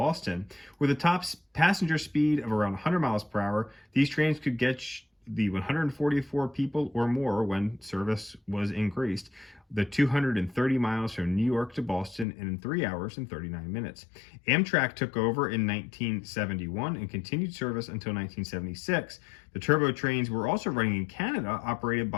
With a top passenger speed of around 100 miles per hour, these trains could get the 144 people or more when service was increased, the 230 miles from New York to Boston in 3 hours and 39 minutes. Amtrak took over in 1971 and continued service until 1976. The turbo trains were also running in Canada, operated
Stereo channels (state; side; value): drops out; right; at 12.2 s